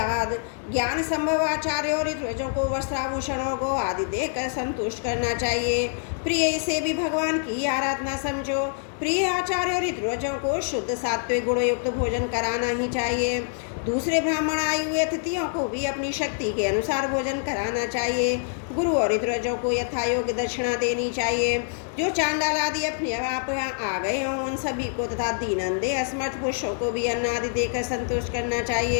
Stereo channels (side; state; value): right; silent; 60 dB below the other